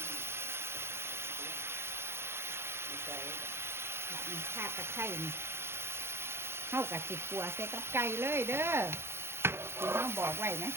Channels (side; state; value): left; late; 0.12 ms